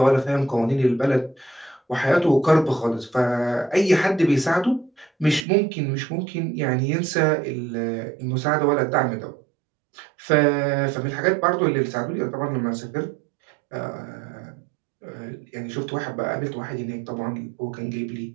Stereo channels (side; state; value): left; drops out; at 5.5 s